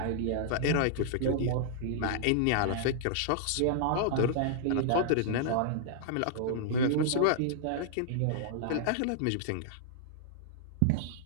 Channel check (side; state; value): both; different; correlation -0.01